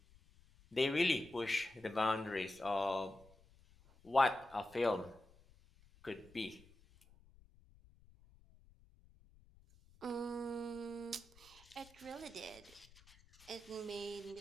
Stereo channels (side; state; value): left; noise; rumble, 26 dB below the sound